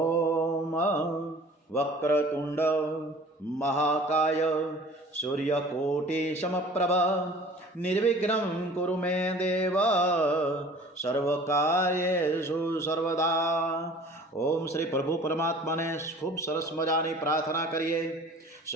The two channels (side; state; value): both; normal; correlation 0.47